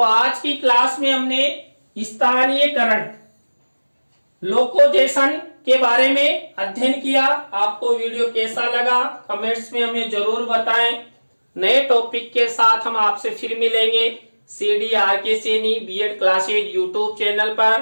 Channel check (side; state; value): both; inverted; correlation -1.00